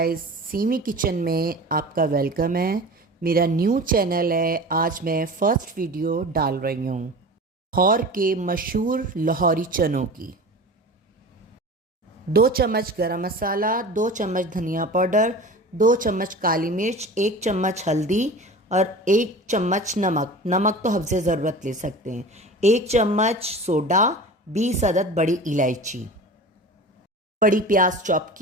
semi kitchen में आपका वेलकम है। मेरा न्यू चैनल है। आज मैं फ़र्स्ट वीडियो डाल रही हूँ लाहौर के मशहूर लाहौरी चनों की। 2 चम्मच गरम मसाला, 2 चम्मच धनिया पाउडर, 2 चम्मच काली मिर्च, 1 चम्मच हल्दी और 1 चम्मच नमक। नमक तो हफ्ज़े ज़रूरत ले सकते हैं। 1 चम्मच सोडा, 20 अदद बड़ी इलायची, बड़ी प्याज चॉप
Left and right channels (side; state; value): both; normal; correlation 0.35